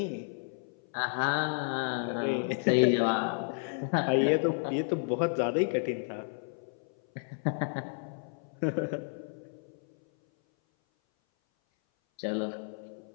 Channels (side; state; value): right; silent; 57 dB below the other